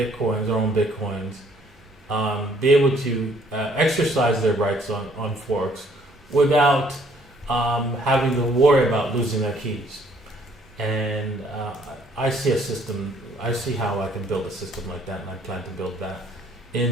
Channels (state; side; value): normal; both; correlation 0.62